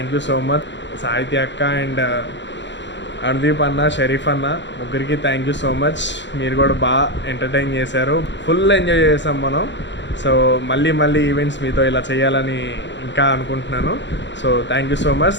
యూ సో మచ్. సాహిత్య అక్క అండ్ అనుదీప్ అన్న, షరీఫ్ అన్న, ముగ్గురికి థ్యాంక్ యూ సో మచ్. మీరు కూడా బాగా ఎంటర్టైన్ చేశారు. ఫుల్ ఎంజాయ్ చేసాం మనం. సో మళ్ళీ ఈవెంట్స్ మీతో ఇలా చేయాలని ఇంకా అనుకుంటున్నాను. So thank you so much.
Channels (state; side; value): late; right; 0.52 ms